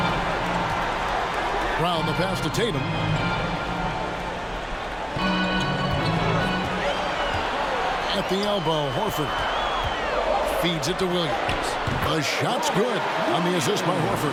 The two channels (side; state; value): both; identical; correlation 1.00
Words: Round the pass to Tatum. At the elbow, Horford feeds it to Williams. The shot's good on the assist by